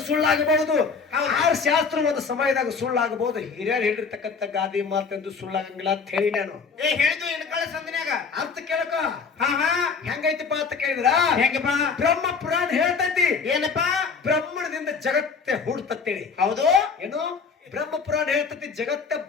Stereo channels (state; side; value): quieter; right; 5.3 dB